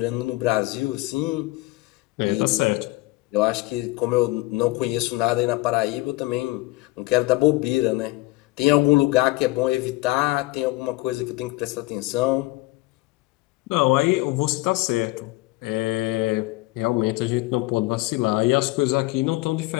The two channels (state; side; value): quieter; right; 20.9 dB